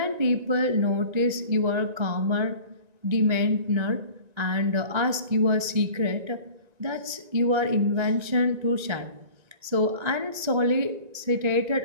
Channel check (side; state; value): left; late; 1.9 ms